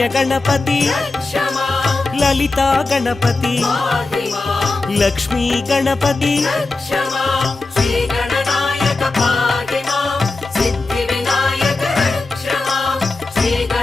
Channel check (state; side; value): quieter; right; 3.4 dB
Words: గణపతి లలితా గణపతి లక్ష్మీ గణపతి